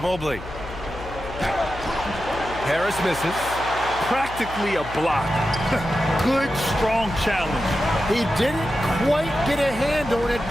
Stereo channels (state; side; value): noise; left; hum, 13 dB below the sound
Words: Mobley. Harris misses. Practically a block. Good, strong challenge. He didn't quite get a hand on it,